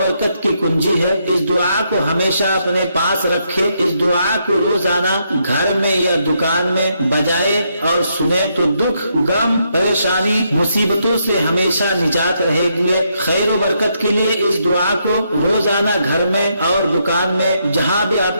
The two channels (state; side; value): inverted; both; correlation -0.77